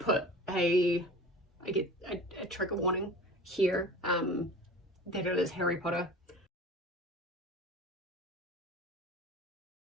I get a trigger warning here, that it is Harry Potter.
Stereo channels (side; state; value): both; normal; correlation 0.39